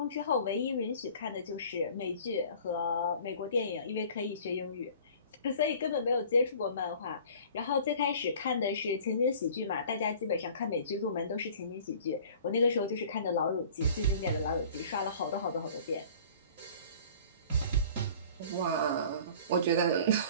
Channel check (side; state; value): both; inverted; correlation -0.47